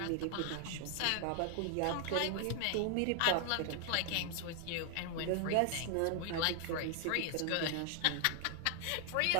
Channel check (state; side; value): different; both; correlation 0.00